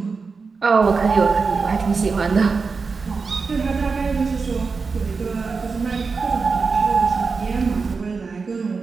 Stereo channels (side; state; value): left; quieter; 4.7 dB